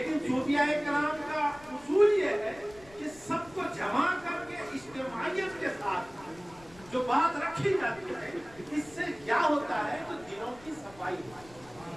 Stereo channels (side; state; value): left; noise; rumble, 23 dB below the sound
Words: صوفیاء کرام کا اصول یہ ہے کہ سب کو جمع کر کے اجتماعیت کے ساتھ جو بات رکھی جاتی ہے، اس سے کیا ہوتا ہے تو دلوں کی صفائی ہوتی ہے،